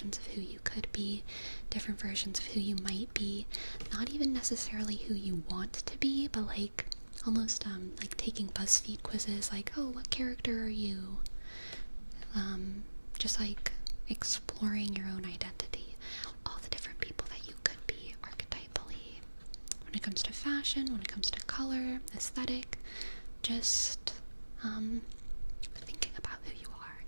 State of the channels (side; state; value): both; inverted; correlation -1.00